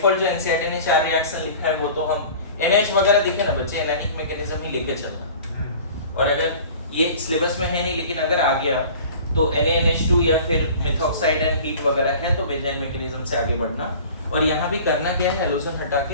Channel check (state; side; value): inverted; both; correlation -0.43